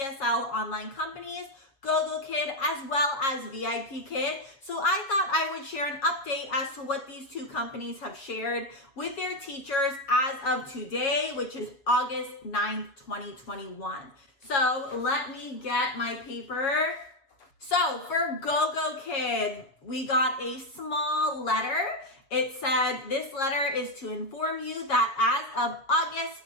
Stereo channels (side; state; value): right; late; 7.2 ms